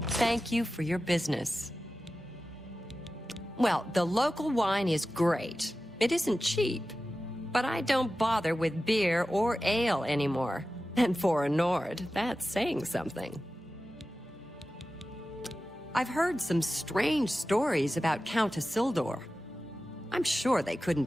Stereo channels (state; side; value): normal; both; correlation 0.94